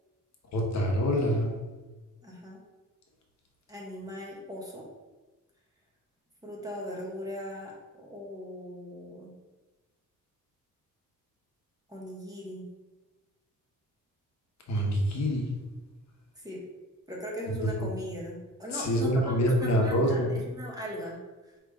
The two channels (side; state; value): both; normal; correlation 0.41